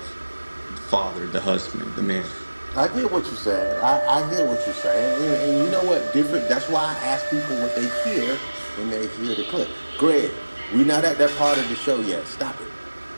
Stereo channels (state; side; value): inverted; both; correlation -1.00